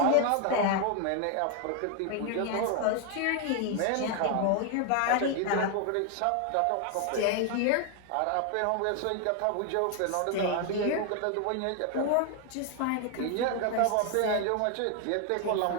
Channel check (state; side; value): different; both; correlation 0.00